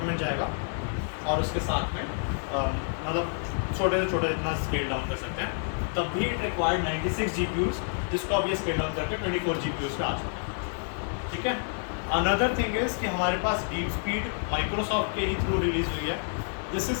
जाएगा, और उसके साथ में मतलब छोटे से छोटे जितना स्केल डाउन कर सकते हैं, तब भी इट रिक्वायर्ड 96 GPUs, जिसको अब ये स्केल डाउन करके 24 GPUs पे आ चुके हैं, ठीक है। अनदर थिंग इज़ कि हमारे पास डीप स्पीड माइक्रोसॉफ्ट के ही थ्रू रिलीज़ हुई है। दिस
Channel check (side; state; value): right; silent; 59 dB below the other